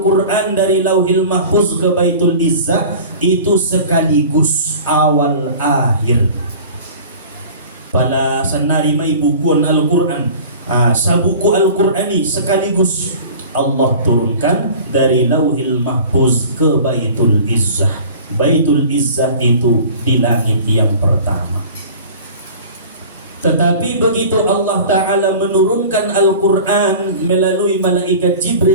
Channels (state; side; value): inverted; both; correlation -0.41